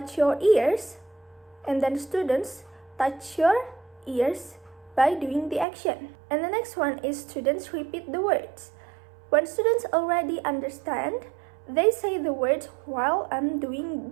your ears, and then students touch your ears by doing the action. And the next one is students repeat the words. When students already understand, they say the words while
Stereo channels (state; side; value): drops out; left; at 5.7 s